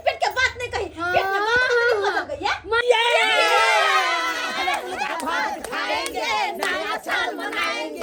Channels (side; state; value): both; identical; correlation 1.00